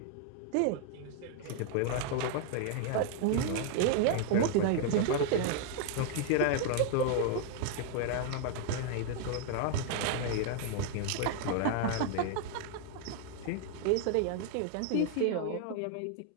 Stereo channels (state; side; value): different; both; correlation 0.00